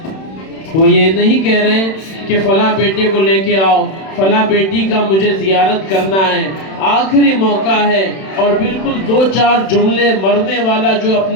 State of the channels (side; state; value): right; late; 31 ms